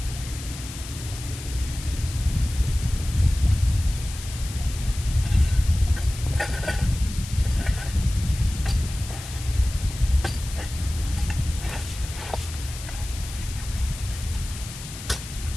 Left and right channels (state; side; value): noise; left; hiss, 12 dB below the sound